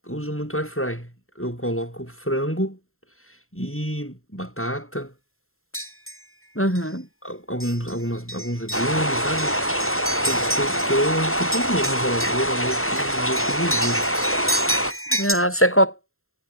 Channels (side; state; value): right; late; 0.62 ms